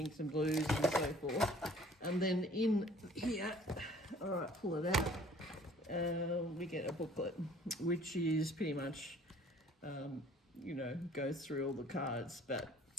and blues and so forth. And then in here, all right, pull it out. We get a booklet which is pretty much goes through all the cards. But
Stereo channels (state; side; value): normal; both; correlation 0.54